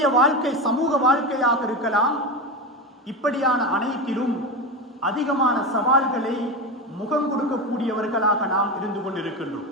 வாழ்க்கை சமூக வாழ்க்கையாக இருக்கலாம். இப்படியான அனைத்திலும் அதிகமான சவால்களை முகம் கொடுக்கக்கூடியவர்களாக நாம் இருந்து கொண்டிருக்கின்றோம்.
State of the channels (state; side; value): normal; both; correlation 0.19